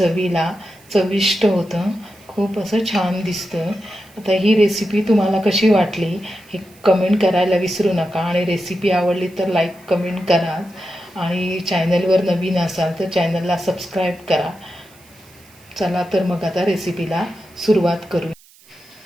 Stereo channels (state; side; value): noise; right; hiss, 27 dB below the sound